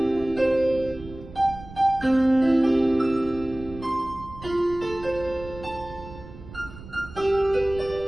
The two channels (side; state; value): right; noise; rumble, 16 dB below the sound